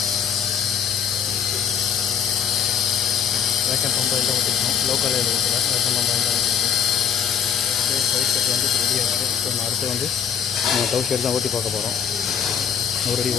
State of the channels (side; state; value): right; quieter; 8.2 dB